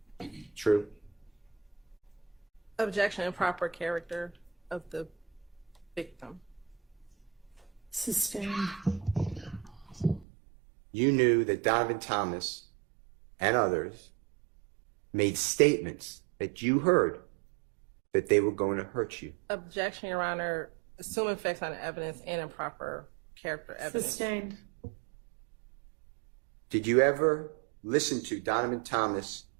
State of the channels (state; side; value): drops out; left; at 10.2 s